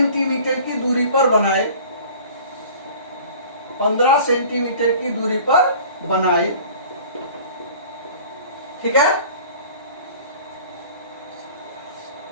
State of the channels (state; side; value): inverted; both; correlation -0.45